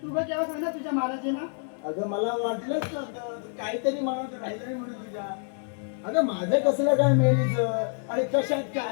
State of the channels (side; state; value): right; silent; 60 dB below the other